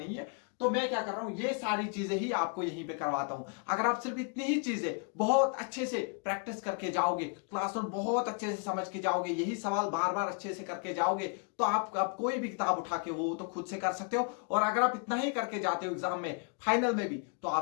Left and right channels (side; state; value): right; quieter; 39.8 dB